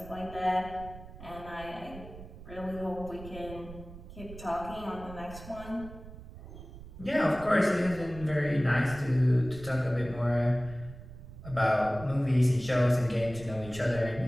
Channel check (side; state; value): right; noise; rumble, 15 dB below the sound